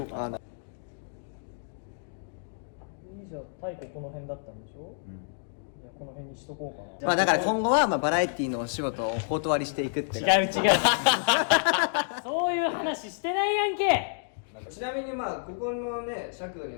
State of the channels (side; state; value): right; silent; digital silence